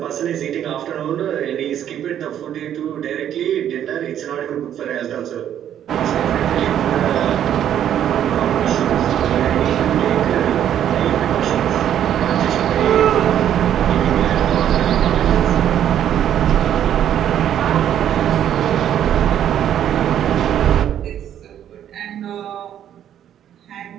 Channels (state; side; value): quieter; left; 10.3 dB